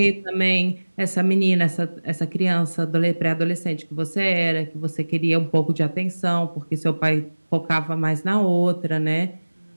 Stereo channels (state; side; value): inverted; both; correlation -1.00